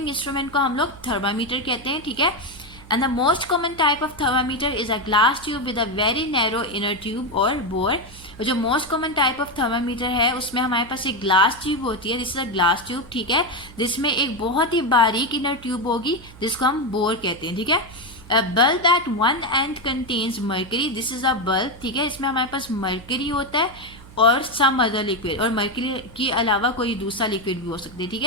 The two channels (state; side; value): noise; right; hum, 20 dB below the sound